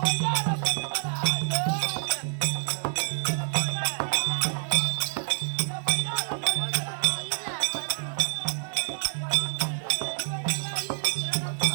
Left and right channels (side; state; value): left; silent; 60 dB below the other